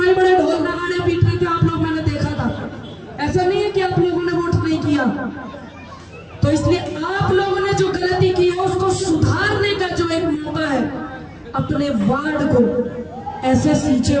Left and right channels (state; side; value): identical; both; correlation 1.00